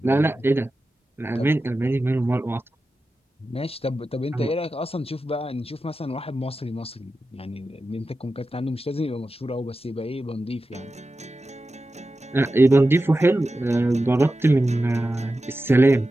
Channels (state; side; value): normal; both; correlation 0.92